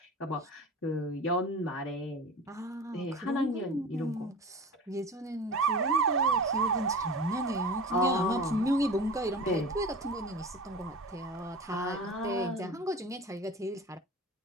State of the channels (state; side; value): normal; both; correlation 0.35